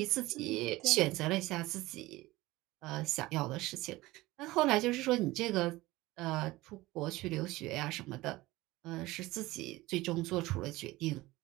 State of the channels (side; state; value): left; quieter; 19.1 dB